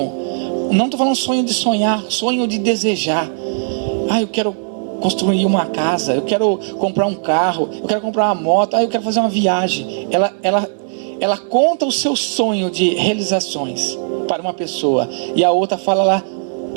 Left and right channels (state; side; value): silent; left; digital silence